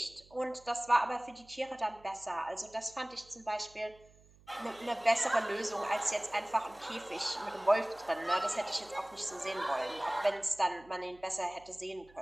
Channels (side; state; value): right; noise; hum, 26 dB below the sound